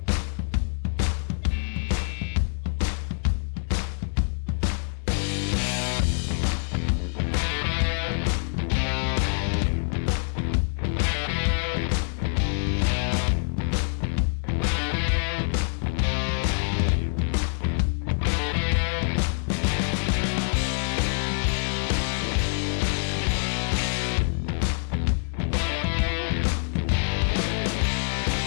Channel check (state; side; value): silent; right; digital silence